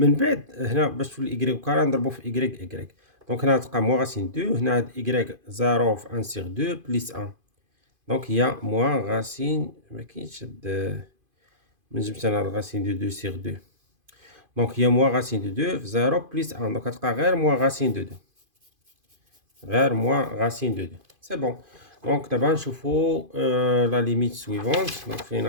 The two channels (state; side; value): late; left; 2.5 ms